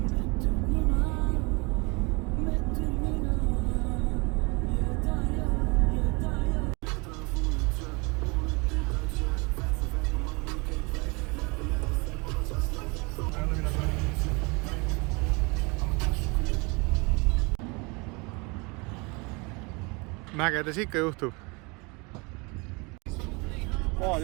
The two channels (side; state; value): left; quieter; 28.6 dB